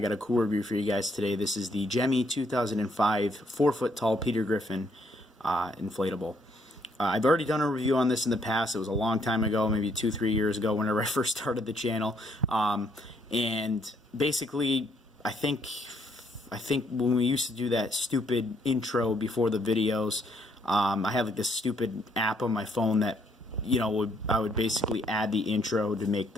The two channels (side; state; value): both; normal; correlation 0.70